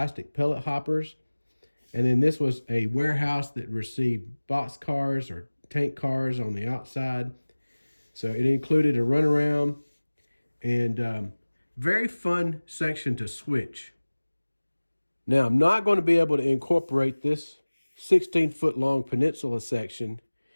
pellet hoppers. And then this was a warehouse that received box cars or tank cars on the outside. So it included a runaround and very fun section to switch. Now, I'm not going to be able to incorporate this 16-foot long peninsula section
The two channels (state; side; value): inverted; both; correlation -1.00